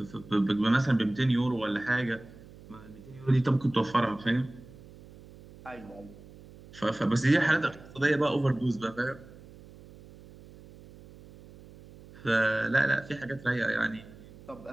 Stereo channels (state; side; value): noise; right; hum, 20 dB below the sound